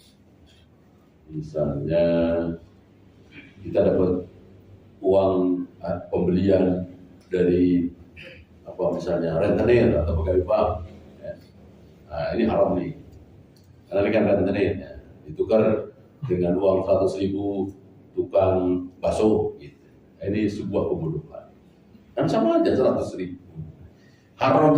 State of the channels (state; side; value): identical; both; correlation 1.00